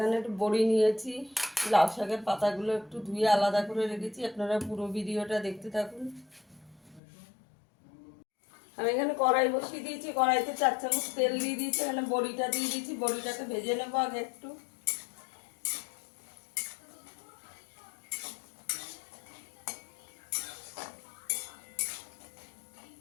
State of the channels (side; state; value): right; drops out; at 7.0 s